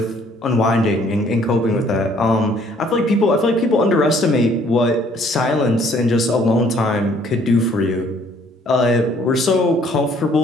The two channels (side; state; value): both; normal; correlation 0.61